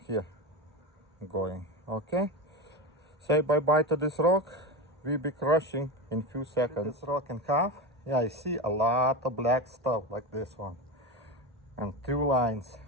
here going. Okay, say bye bye to this rock. We'll be crushing in few seconds. This rock in half. Yeah, I see a lot of black stuff like this one, and two lines.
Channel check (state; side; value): normal; both; correlation 0.20